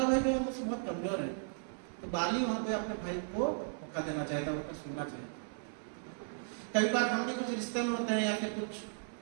भाई जो है मुझसे बहुत कमजोर है, तो बाली वहां पे अपने भाई को मौका देना चाहता है, उनका सुनना चाहिए। कई बार हम भी कुछ रिश्ते में होते हैं या फिर कुछ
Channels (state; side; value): silent; left; 54 dB below the other